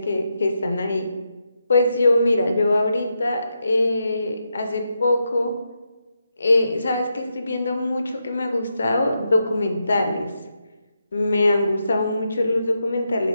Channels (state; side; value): inverted; both; correlation -0.84